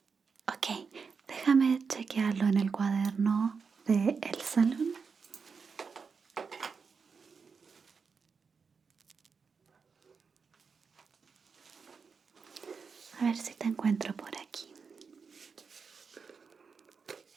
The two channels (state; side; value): quieter; left; 5.4 dB